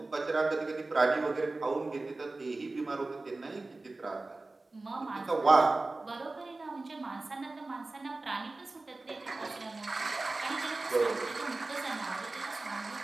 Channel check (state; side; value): quieter; left; 3.2 dB